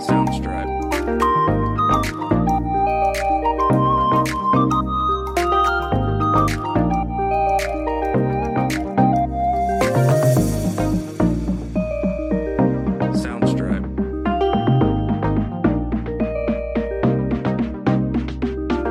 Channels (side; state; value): both; identical; correlation 1.00